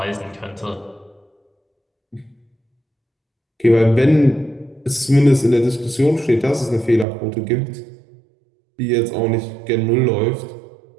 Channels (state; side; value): drops out; left; at 7.1 s